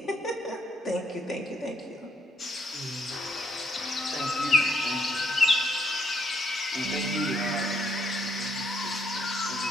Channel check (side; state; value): both; normal; correlation 0.70